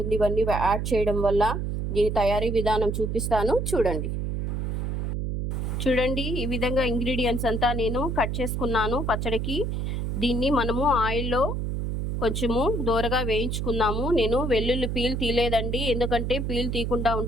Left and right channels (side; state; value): right; noise; hum, 2 dB below the sound